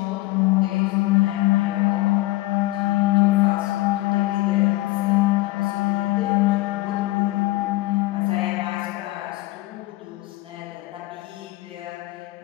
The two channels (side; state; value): right; quieter; 19.0 dB